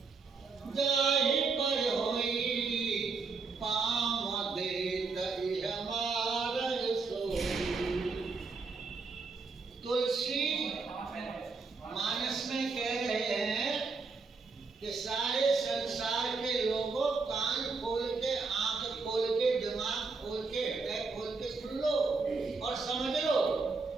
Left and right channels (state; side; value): quieter; left; 4.4 dB